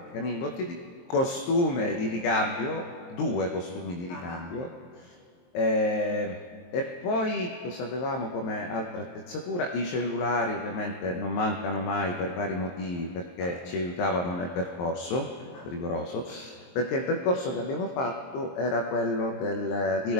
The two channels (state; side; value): late; right; 23 ms